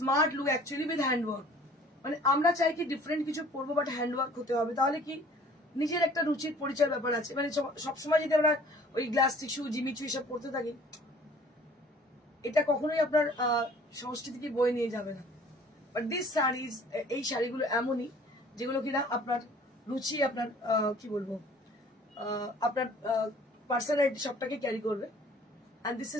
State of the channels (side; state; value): both; normal; correlation 0.52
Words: look actually with handwork. মানে আমরা চাই কি ডিফারেন্ট কিছু পরবো, বাট হ্যান্ডওয়ার্ক হতে হবে, তাহলে কি নিজের একটা রুচির পরিচয় ব্যাপার আছে। মানে সবসময় যদি আমরা ওই গ্লাস টিস্যু, জিমিচু এসব পড়তে থাকি, এটা কখনোই আপনার সংস্কৃতিকে বয়ে নিয়ে যাবে না। বাট দিস শাড়িজ, এই শাড়িগুলো এমনই যেগুলো কিনা আপনার রুচি, আপনার কি বলবো, আপনার পার্সোনালিটি সবটাকে ক্যারি করবে। And this